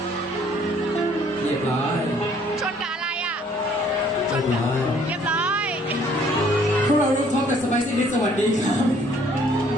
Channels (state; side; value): normal; both; correlation 0.60